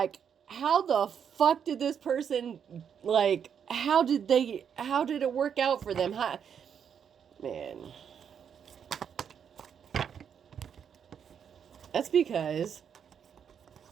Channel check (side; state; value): left; quieter; 7.8 dB